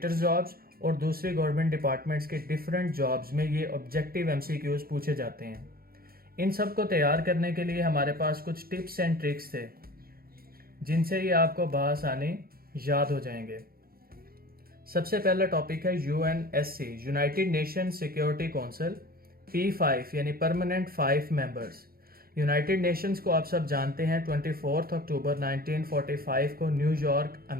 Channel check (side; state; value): left; late; 0.43 ms